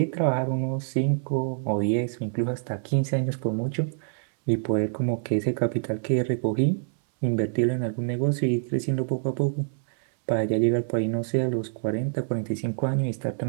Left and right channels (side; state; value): left; silent; digital silence